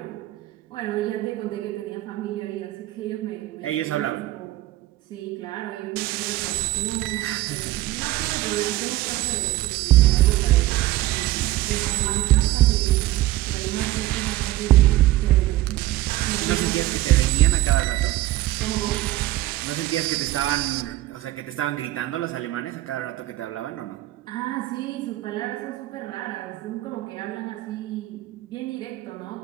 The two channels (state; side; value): quieter; left; 16.5 dB